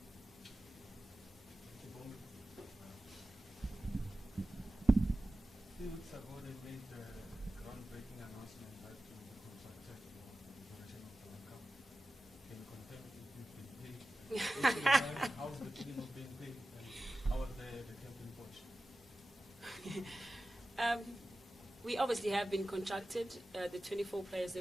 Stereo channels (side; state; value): both; normal; correlation 0.94